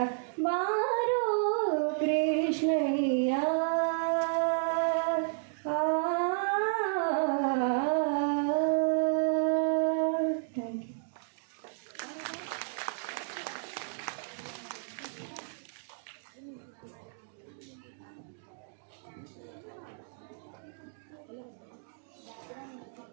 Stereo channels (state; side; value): silent; left; digital silence